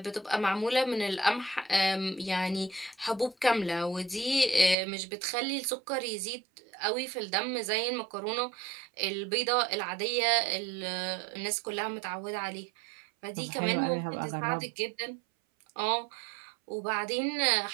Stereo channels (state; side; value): drops out; left; at 4.8 s